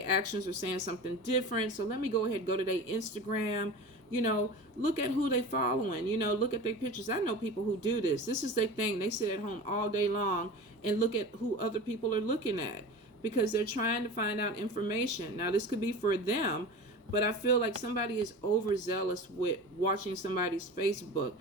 actions are saying something different. So let me go ahead and go to their Instagram. Look at who they following. Look at their pictures. I know people who do this. This is their thing. They sit at home all day long and look at who other people are looking at, because they're trying to find out information. Now, this could be for them, but I feel like somebody is overzealous with watching somebody's Facebook.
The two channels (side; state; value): both; normal; correlation 0.33